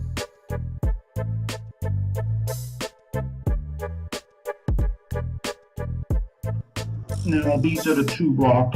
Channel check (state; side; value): identical; both; correlation 1.00